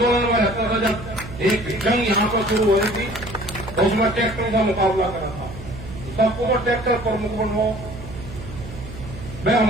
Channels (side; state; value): right; noise; hum, 12 dB below the sound